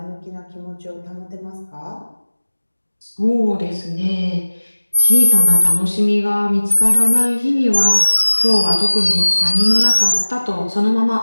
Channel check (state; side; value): inverted; both; correlation -1.00